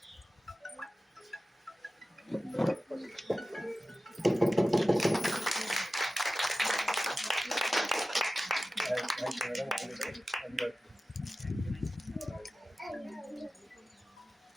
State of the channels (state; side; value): normal; both; correlation 0.95